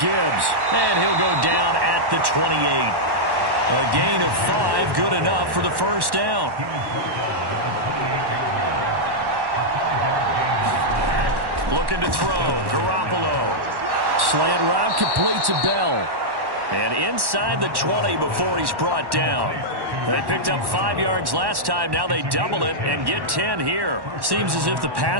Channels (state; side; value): late; left; 1.1 ms